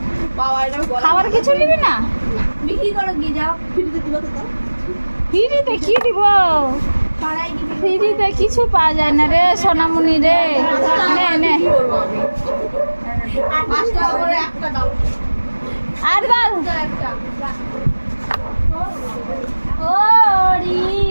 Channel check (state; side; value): inverted; both; correlation -1.00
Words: পাওয়া এটা খাবার কিছু নিবি না? বিক্রি করো গিয়ে যাও, ফ্রিতে দিবা তো তাও। ফ্রিতে কি দিব? পাড়ায় গিয়ে ফ্রিতে কিছু পাওয়া যায় না রে সোনামণি রে। নে নে কি করব আমি? 5 টাকা করে একটা দাও। আর বল একটা